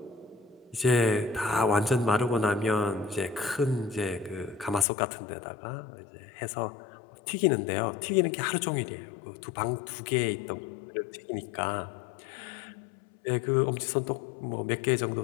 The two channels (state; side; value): drops out; right; at 4.9 s